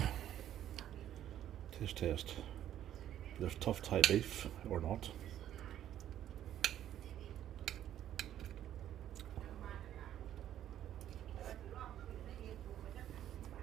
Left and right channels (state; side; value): quieter; left; 11.3 dB